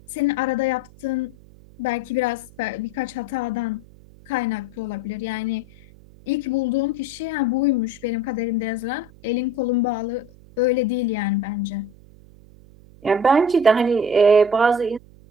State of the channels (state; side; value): noise; right; hum, 23 dB below the sound